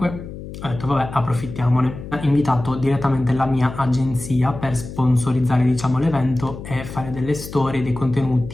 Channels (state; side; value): noise; left; hum, 11 dB below the sound